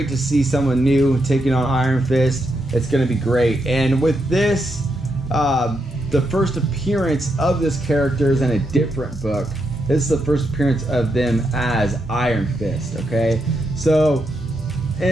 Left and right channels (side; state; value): both; normal; correlation 0.82